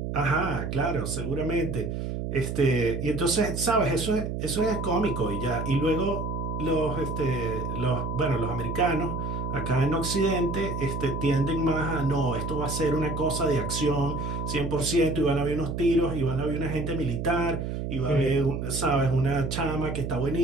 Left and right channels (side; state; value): right; noise; hum, 4 dB below the sound